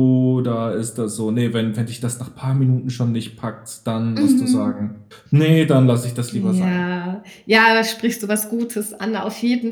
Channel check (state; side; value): identical; both; correlation 1.00